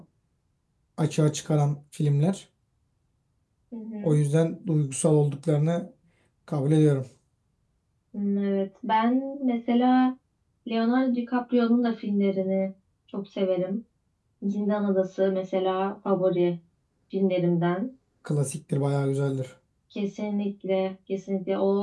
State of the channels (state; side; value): identical; both; correlation 1.00